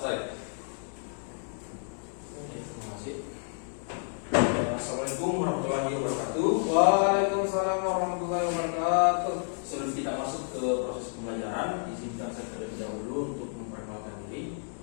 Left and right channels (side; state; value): right; silent; 58 dB below the other